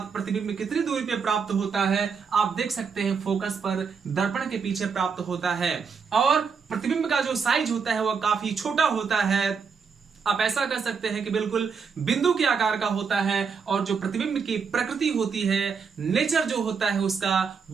प्रतिबिंब कितनी दूरी पे प्राप्त होता है, आप देख सकते हैं फोकस पर दर्पण के पीछे प्राप्त होता है। और प्रतिबिंब का जो साइज होता है वह काफी छोटा होता है। आप ऐसा कर सकते हैं कि बिल्कुल बिंदु के आकार का होता है। और जो प्रतिबिंब की प्रकृति होती है, नेचर जो होता है उसका,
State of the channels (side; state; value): left; quieter; 5.8 dB